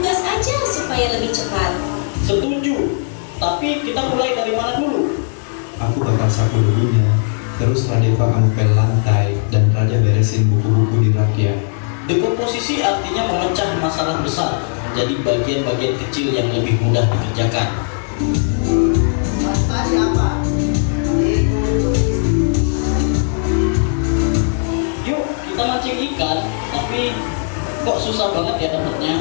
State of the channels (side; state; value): right; silent; 62 dB below the other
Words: supaya lebih cepat. Setuju. Tapi kita mulai dari mana dulu? Aku bakal sapu debunya, terus Radeva kamu pel lantai, dan Raja beresin buku-buku di rak ya. Dekomposisi artinya memecah masalah besar menjadi bagian-bagian kecil yang lebih mudah dikerjakan. Tadi apa? Yuk, kita mancing ikan, tapi kok susah banget ya